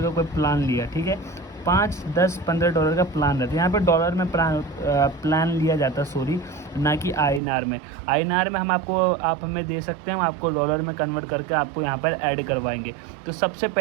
का कोई प्लान लिया, ठीक है, 5, 10, $15 का प्लान रहता है। यहाँ पे डॉलर में प्लान लिया जाता है, सॉरी, ना कि INR में। INR में आप हमें दे सकते हैं, हम आपको डॉलर में कन्वर्ट करके आपको यहाँ पर ऐड करवाएंगे। तो सबसे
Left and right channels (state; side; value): drops out; left; at 7.4 s